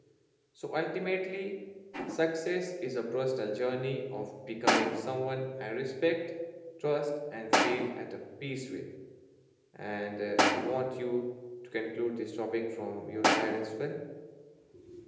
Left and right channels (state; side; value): identical; both; correlation 1.00